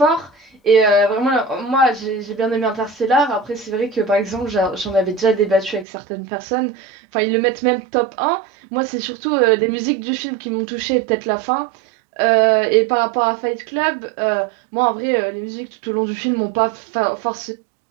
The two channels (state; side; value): drops out; left; at 5.9 s